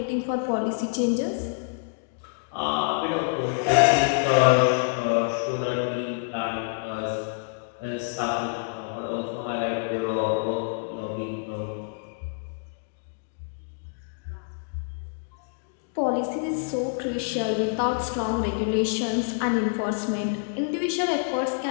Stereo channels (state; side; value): quieter; right; 37.4 dB